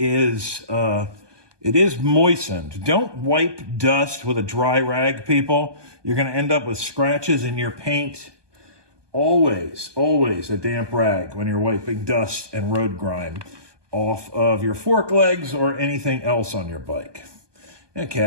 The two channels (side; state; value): left; late; 1.2 ms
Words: moistened. Don't wipe dust with a dry rag, people. You're going to end up with scratches in your paint. Always a damp rag when you're wiping dust and road grime off of your fork legs or anything else on your bike.